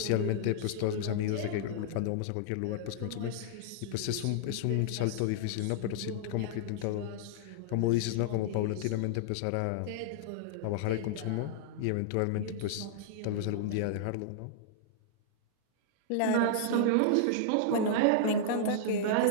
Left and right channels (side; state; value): both; different; correlation -0.01